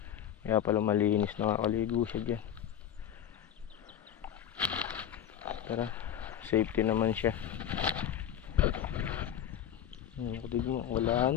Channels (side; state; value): right; quieter; 9.9 dB